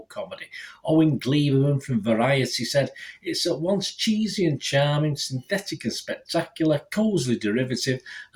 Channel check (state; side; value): identical; both; correlation 1.00